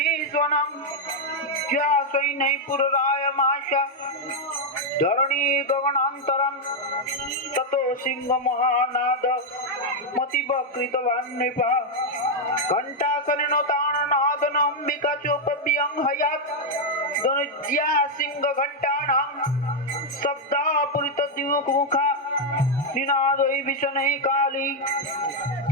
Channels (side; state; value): both; normal; correlation 0.00